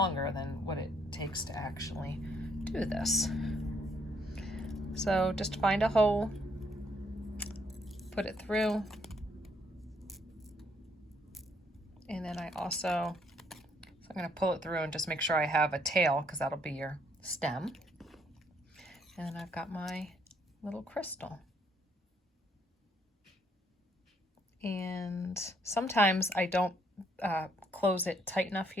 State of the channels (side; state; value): both; normal; correlation 0.70